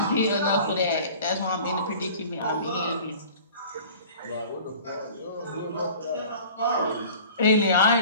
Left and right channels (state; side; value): inverted; both; correlation -0.44